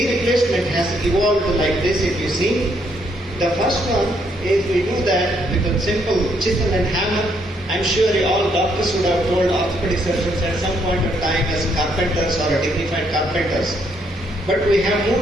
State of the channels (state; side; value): normal; both; correlation 0.72